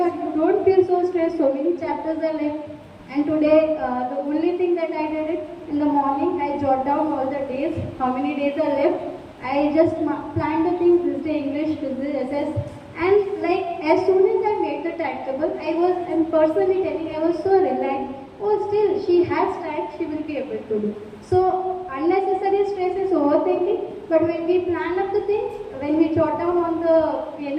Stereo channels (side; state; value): both; identical; correlation 1.00